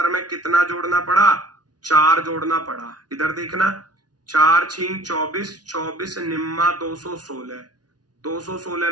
में कितना जोड़ना पड़ा? 4 जोड़ना पड़ा। इधर देखना, 4 छिंग 24, 24 निम्मा 216, 216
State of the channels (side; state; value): left; late; 0.69 ms